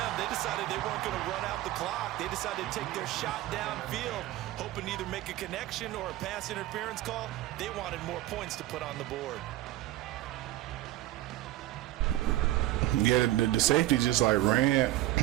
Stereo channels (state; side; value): quieter; left; 15.4 dB